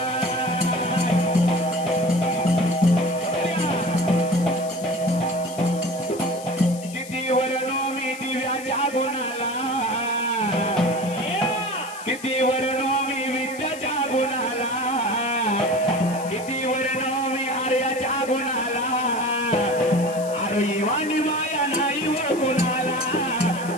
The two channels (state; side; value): noise; left; hiss, 16 dB below the sound